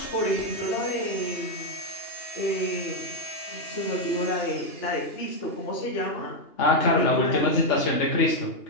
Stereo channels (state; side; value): late; right; 2.8 ms